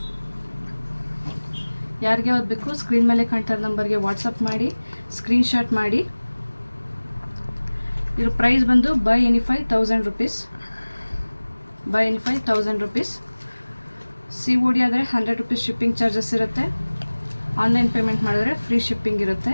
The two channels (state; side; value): inverted; both; correlation -1.00